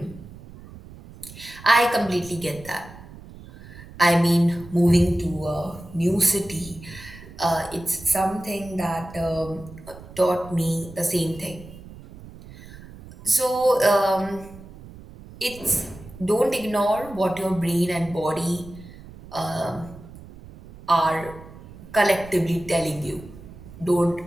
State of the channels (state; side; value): noise; right; rumble, 17 dB below the sound